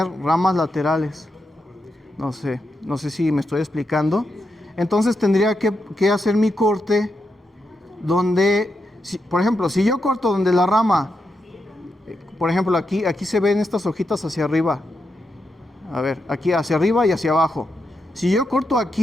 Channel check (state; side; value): normal; both; correlation 0.85